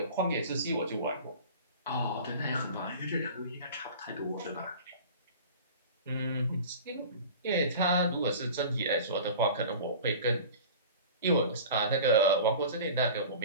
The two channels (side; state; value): both; inverted; correlation -0.38